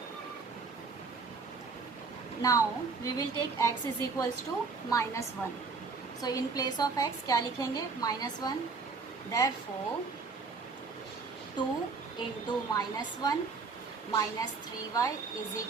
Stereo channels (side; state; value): left; quieter; 4.6 dB